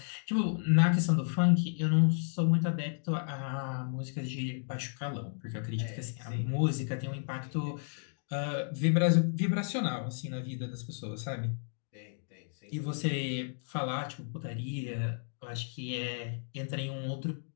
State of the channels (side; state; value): right; silent; digital silence